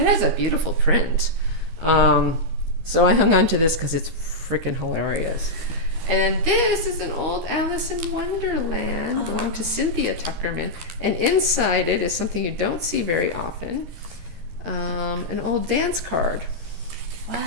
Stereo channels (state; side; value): late; left; 12 ms